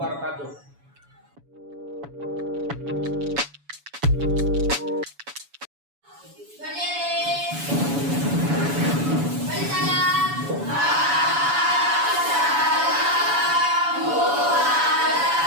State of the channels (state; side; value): late; left; 7.0 ms